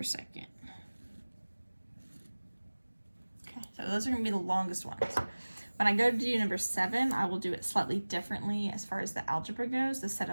second. Okay, so those are going to be the longest ones. When I go to do number 7, I will do it slightly differently as far as the algebra goes. The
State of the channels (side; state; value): both; inverted; correlation -1.00